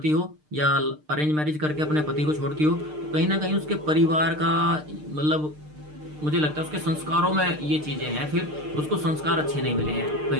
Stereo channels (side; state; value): left; late; 6.6 ms